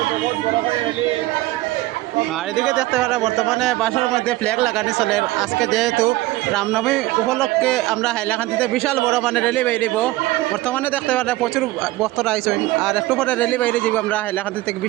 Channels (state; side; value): quieter; left; 18.1 dB